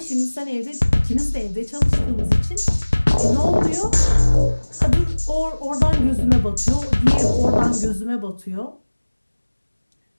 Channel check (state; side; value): inverted; both; correlation -1.00